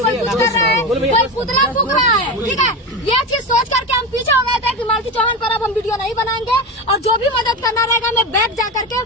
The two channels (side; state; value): both; normal; correlation 0.20